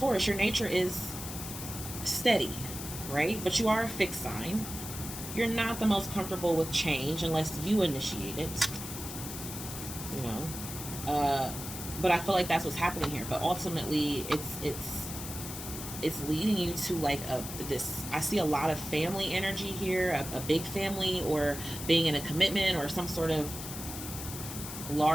your nature is steady, right? But you are a fixed sign. You're not the most comfortable with change unless you initiate it. You know, but I feel like that's what's happening here. But ultimately, it's leading you to like this. I see a lot of family energy here, a big family, or being in a commitment, or some sort of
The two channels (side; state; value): left; noise; hiss, 8 dB below the sound